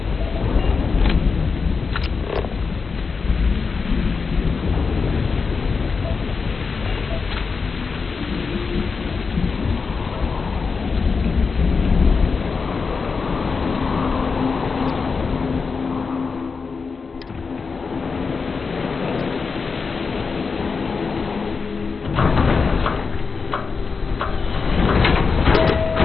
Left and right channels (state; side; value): quieter; right; 4.9 dB